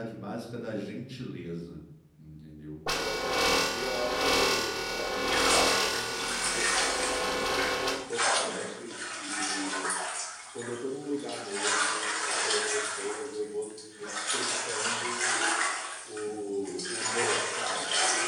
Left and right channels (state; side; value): identical; both; correlation 1.00